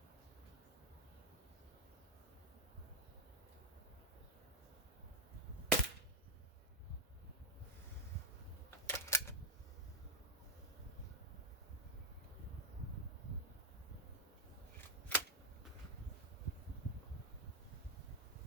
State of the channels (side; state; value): both; normal; correlation 0.02